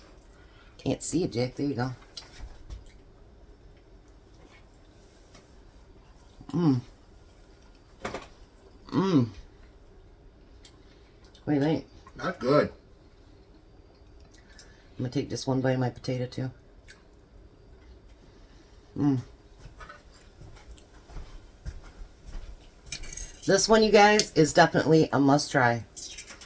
Can't see it, Jack. There you go. Mmm. Mmm. What do you think? Not good. I'm going to take just one bite of my potato, too. Mmm. This one, you guys, is definitely a must-try.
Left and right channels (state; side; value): identical; both; correlation 1.00